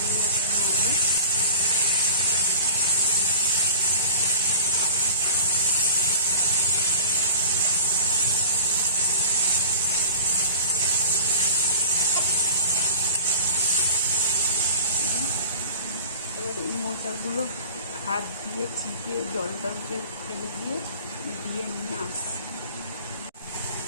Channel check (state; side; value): inverted; both; correlation -0.38